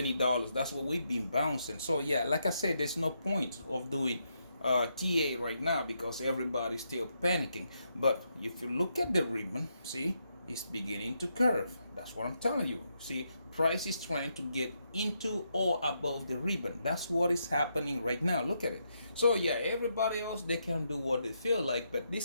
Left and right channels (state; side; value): inverted; both; correlation -0.80